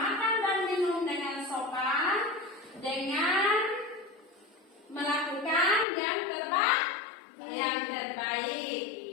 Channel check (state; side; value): drops out; right; at 5.9 s